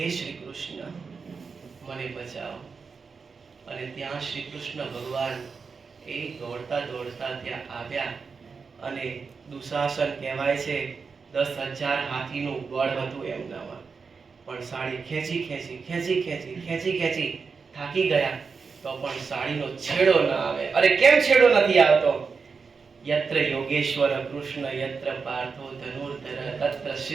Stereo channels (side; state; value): left; quieter; 5.2 dB